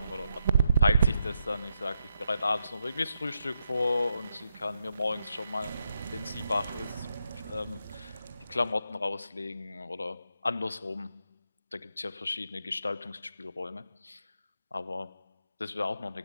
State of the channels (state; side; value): inverted; both; correlation -0.83